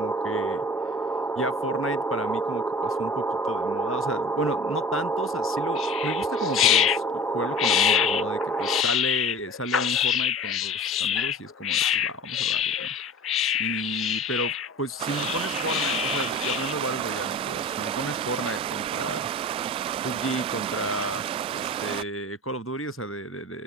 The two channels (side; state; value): both; normal; correlation 0.38